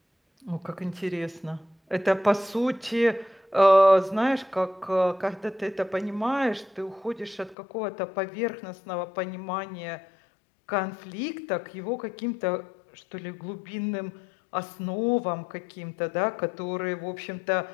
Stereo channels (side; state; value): right; drops out; at 7.6 s